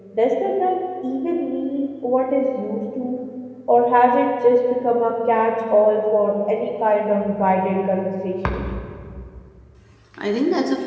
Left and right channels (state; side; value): identical; both; correlation 1.00